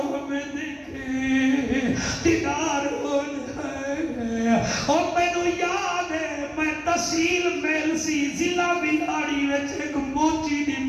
ہمیں دیکھے دیدار ہو جائے اور مینوں یاد ہے میں تحصیل میل سی ضلع بلاڑی وچ ایک موچی دی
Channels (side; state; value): both; identical; correlation 1.00